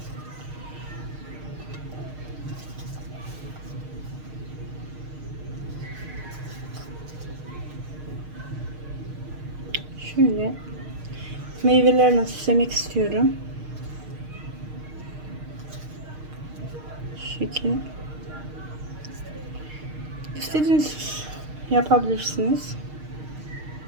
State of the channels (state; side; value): late; left; 6.5 ms